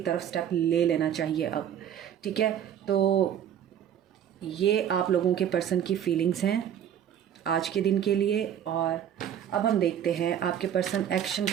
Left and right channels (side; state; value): left; quieter; 9.6 dB